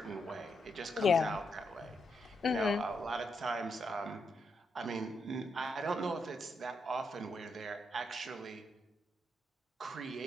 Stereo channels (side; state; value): both; normal; correlation 0.81